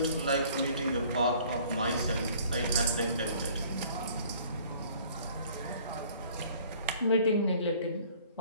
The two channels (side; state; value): both; inverted; correlation -0.54